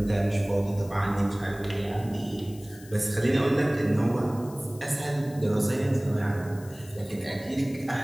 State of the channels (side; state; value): left; noise; hiss, 21 dB below the sound